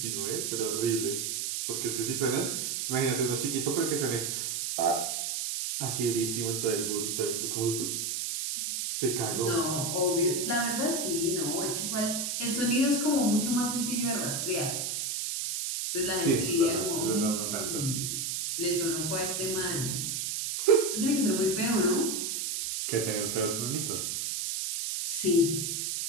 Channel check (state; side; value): noise; right; hiss, 1 dB below the sound